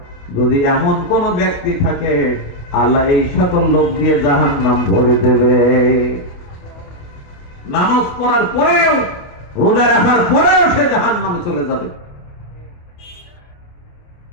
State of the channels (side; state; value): right; late; 28 ms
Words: যদি এমন কোন ব্যক্তি থাকে, আল্লাহ এই সকল লোক দিয়ে জাহান্নাম ভরে দেবে। নামাজ পড়ার পরেও, রোজা রাখার পরেও সে জাহান্নামে চলে যাবে।